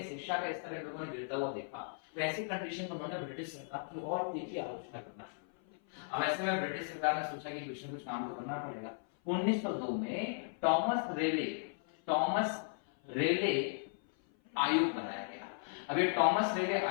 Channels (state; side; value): silent; right; 54 dB below the other